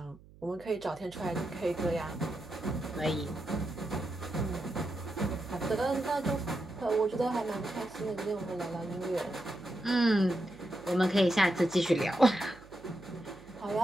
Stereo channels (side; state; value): right; noise; hum, 23 dB below the sound